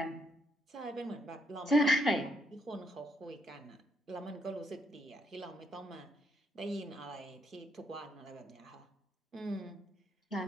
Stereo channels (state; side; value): normal; both; correlation 0.76